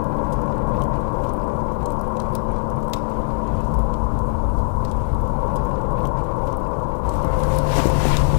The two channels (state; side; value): silent; right; digital silence